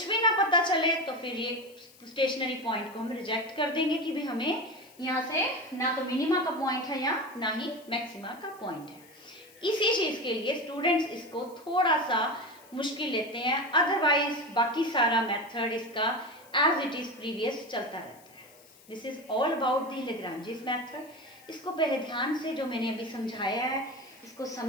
भी ना पता चले तो फिर ये स्टेशनरी पॉइंट को हम रिजेक्ट कर देंगे कि भाई हमें यहाँ से ना तो मिनिमा का पॉइंट है या ना ही मैक्सिमा का पॉइंट है। इसी चीज के लिए स्टूडेंट्स इसको थोड़ा सा मुश्किल लेते हैं, अदरवाइज बाकी सारा मेथड इसका एज इट इज प्रीवियस चलता रहता है। This is all about the Lagrange's method. इसको पहले ध्यान से जो मैंने अभी समझाया है इसको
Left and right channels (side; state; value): left; noise; hiss, 25 dB below the sound